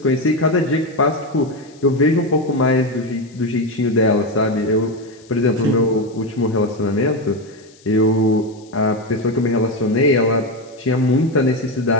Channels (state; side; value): noise; left; hiss, 28 dB below the sound